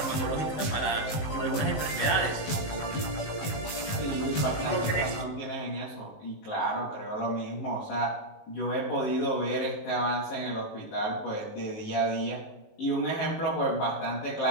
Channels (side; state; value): right; late; 19 ms